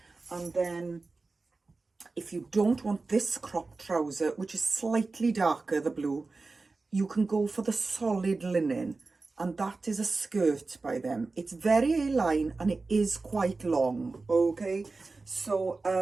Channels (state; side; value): quieter; left; 3.7 dB